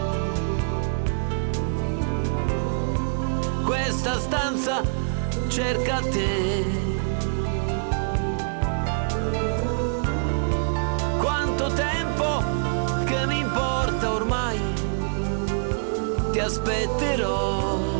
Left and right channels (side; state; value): left; silent; digital silence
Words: Questa stanza cerca te. Quanto tempo che mi importa ormai, ti aspetterò.